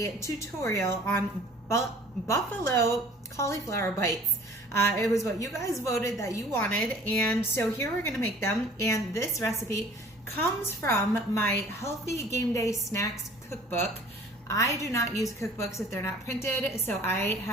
tutorial on buffalo cauliflower bites. It was what you guys voted that you wanted, and so here we're gonna make them. And this recipe comes from my Healthy Game Day Snacks cookbook. I do not use cookbooks if they're not printed, so I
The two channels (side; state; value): both; normal; correlation 0.50